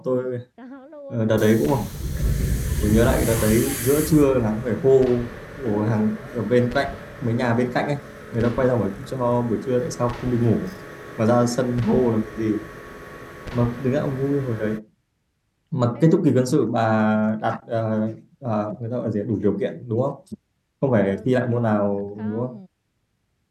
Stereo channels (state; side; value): identical; both; correlation 1.00